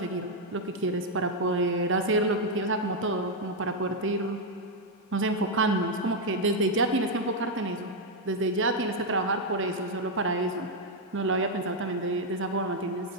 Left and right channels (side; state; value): both; normal; correlation 0.00